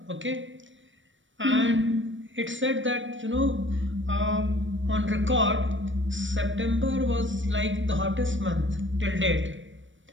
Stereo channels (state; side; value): late; left; 0.56 ms